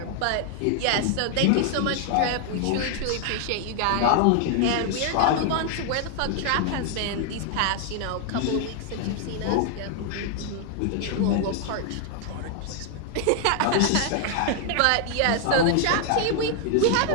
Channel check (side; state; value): both; different; correlation 0.00